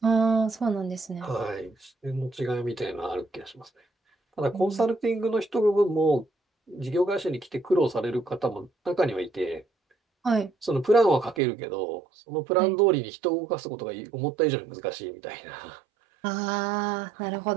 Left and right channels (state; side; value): drops out; left; at 11.4 s